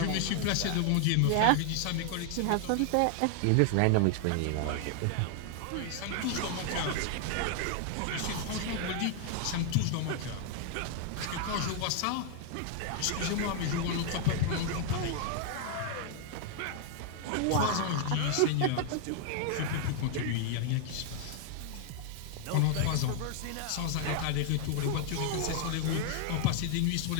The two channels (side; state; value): both; different; correlation 0.00